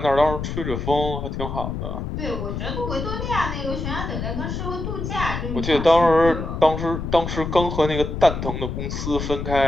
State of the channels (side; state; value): left; noise; rumble, 4 dB below the sound